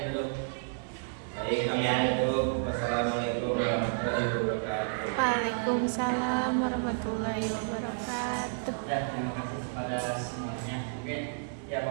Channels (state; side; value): silent; left; digital silence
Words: dulu. Baik, kami tutup. Wassalamualaikum warahmatullahi wabarakatuh. Waalaikumsalam. Waalaikumsalam warahmatullahi wabarakatuh. Ya, terima kasih kepada semuanya. Oke, ya